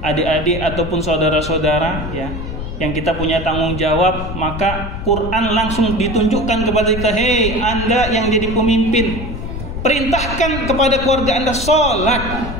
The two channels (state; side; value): noise; left; rumble, 7 dB below the sound